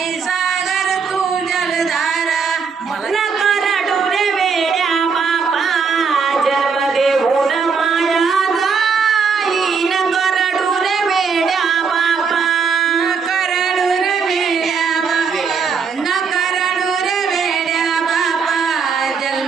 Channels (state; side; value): quieter; left; 5.6 dB